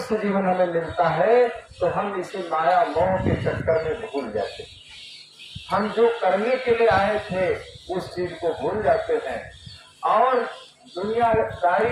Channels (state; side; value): identical; both; correlation 1.00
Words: जीवन हमें मिलता है तो हम इसे माया मोह के चक्कर में भूल जाते हैं। हम जो करने के लिए आए थे उस चीज को भूल जाते हैं और